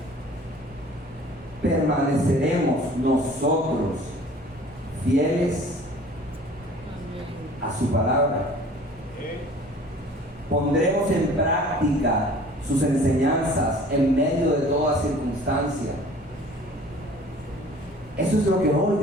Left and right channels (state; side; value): normal; both; correlation 0.48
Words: ¿permaneceremos nosotros fieles a su palabra? ¿Pondremos en práctica sus enseñanzas en medio de toda circunstancia? Eso es lo que hoy